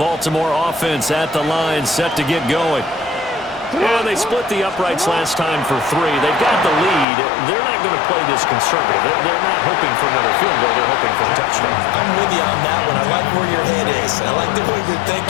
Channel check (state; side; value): drops out; right; at 7.1 s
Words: Baltimore offense at the line, set to get going. Yeah, they split the uprights last time for 3. They've got the lead. They're not going to play this conservative. They're not hoping for another field goal. They're hoping for a touchdown. I'm with you on that one. I like where your head is. I like the way you're